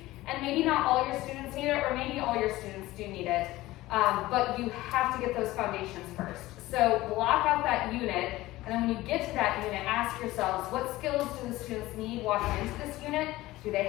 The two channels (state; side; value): quieter; right; 17.6 dB